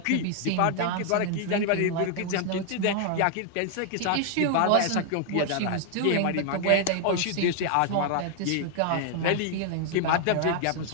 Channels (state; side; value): different; both; correlation 0.00